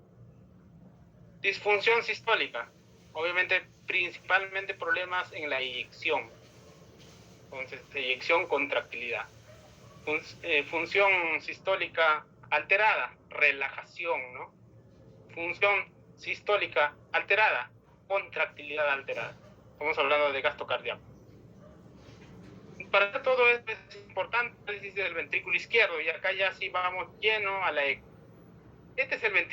Disfunción sistólica, obviamente principalmente problemas en la eyección. Entonces, eyección, contractilidad. Función sistólica alterada, relajación, ¿no? Función sistólica alterada, contractilidad alterada. Estamos hablando de gasto cardíaco. Para todo esto es importante el análisis del ventrículo izquierdo, y acá ya sí vamos lleno a la eco. Este es el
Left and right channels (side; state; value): both; identical; correlation 1.00